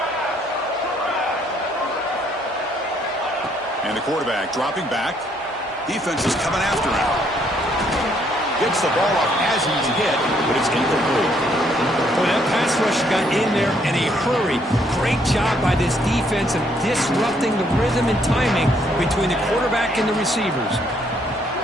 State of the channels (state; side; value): normal; both; correlation 0.69